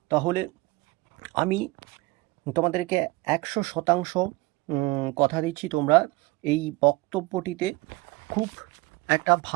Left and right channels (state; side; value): quieter; left; 21.6 dB